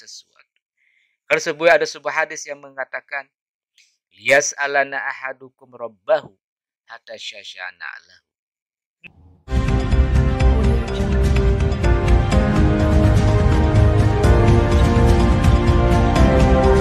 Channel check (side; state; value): both; identical; correlation 1.00